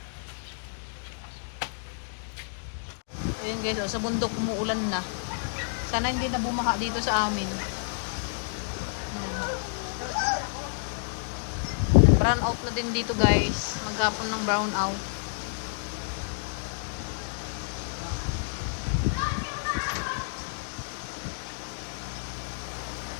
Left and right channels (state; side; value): silent; right; digital silence